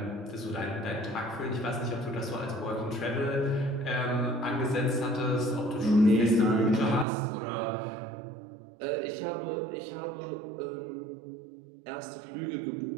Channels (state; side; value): drops out; left; at 7.1 s